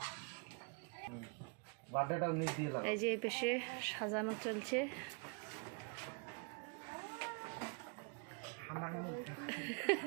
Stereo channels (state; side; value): quieter; left; 37.1 dB